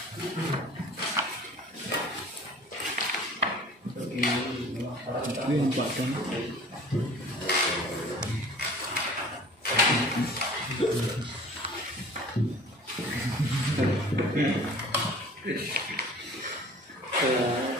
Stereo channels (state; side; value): normal; both; correlation 0.46